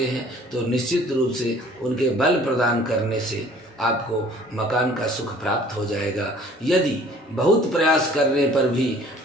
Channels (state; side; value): normal; both; correlation 0.52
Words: हैं तो निश्चित रूप से उनके बल प्रदान करने से आपको मकान का सुख प्राप्त हो जाएगा। यदि बहुत प्रयास करने पर भी